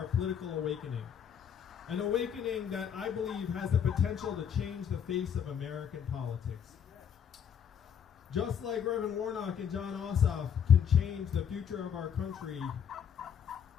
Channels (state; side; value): quieter; right; 8.2 dB